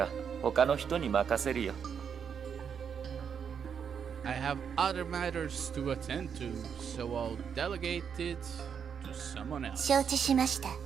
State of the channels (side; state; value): left; quieter; 7.3 dB